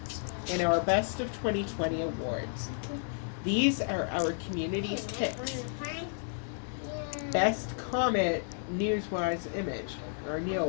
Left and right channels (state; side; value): silent; right; digital silence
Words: in our Best of 2020 awards. These are our community's picks. Best Comet Neowise image, or